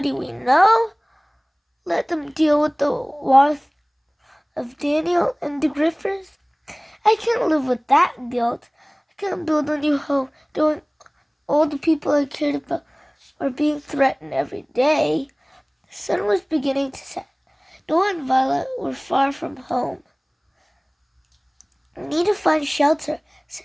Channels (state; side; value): identical; both; correlation 1.00